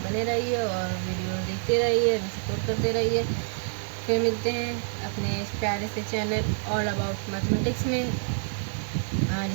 बने रहिए और वीडियो देखते रहिए, सपोर्ट करते रहिए। फिर मिलते हैं अपने इस प्यारे से चैनल ऑल अबाउट मैथमेटिक्स में,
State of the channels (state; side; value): silent; left; 60 dB below the other